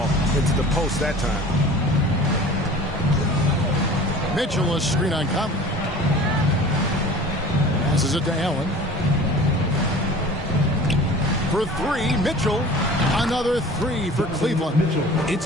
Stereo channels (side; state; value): both; normal; correlation 0.42